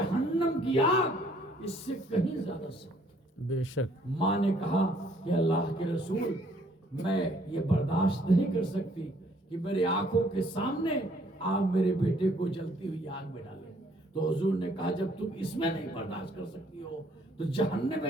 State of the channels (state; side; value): normal; both; correlation 0.63